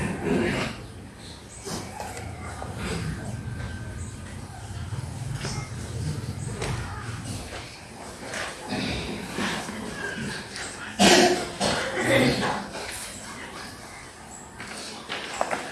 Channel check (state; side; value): identical; both; correlation 1.00